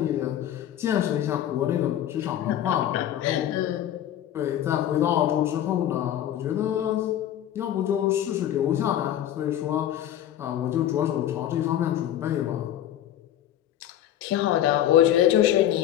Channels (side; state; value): right; quieter; 11.5 dB